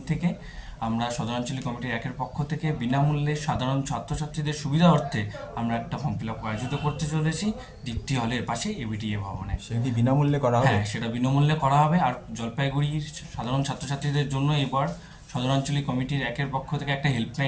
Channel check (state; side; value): identical; both; correlation 1.00